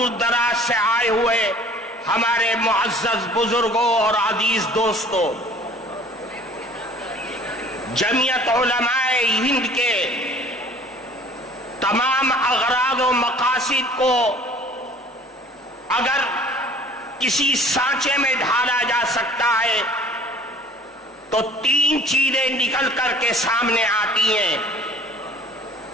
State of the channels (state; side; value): normal; both; correlation 0.50